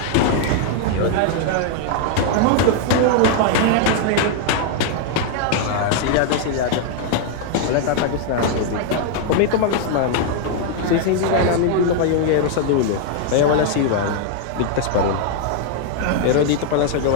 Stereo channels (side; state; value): both; different; correlation 0.00